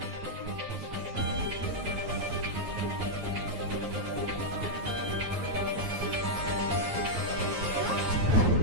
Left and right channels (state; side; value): late; left; 9.3 ms